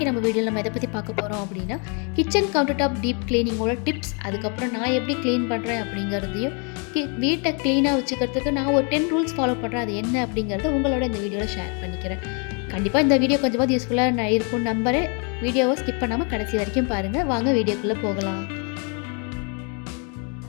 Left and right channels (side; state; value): right; quieter; 36.8 dB